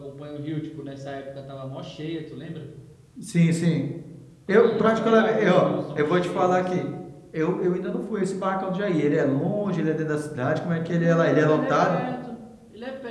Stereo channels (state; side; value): identical; both; correlation 1.00